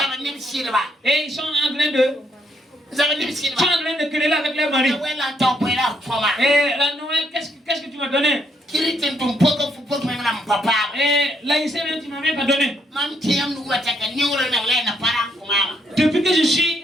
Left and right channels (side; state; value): both; normal; correlation 0.73